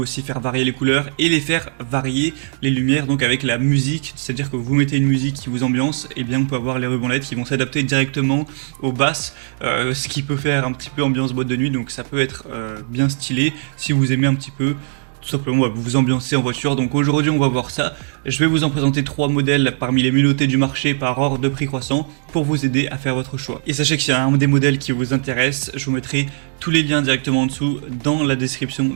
faire varier les couleurs et les faire varier les lumières donc avec la musique, c'est-à-dire que vous mettez une musique qui vous ambiance, et bien on peut avoir les rubans LED qui vont s'adapter directement aux basses, ce qui peut faire un petit peu ambiance boîte de nuit, donc ça peut être bien stylé si vous aimez un petit peu tout simplement vous ambiancer en voiture. Donc aujourd'hui on va voir ça. Je vais vous en présenter 3 modèles parmi les mieux notés du marché par ordre de prix croissant pour vous aider à faire votre choix. Et sachez que s'il y a un des modèles qui vous intéresse, je vous mettrai tous les liens directement en dessous dans la description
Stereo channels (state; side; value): silent; left; digital silence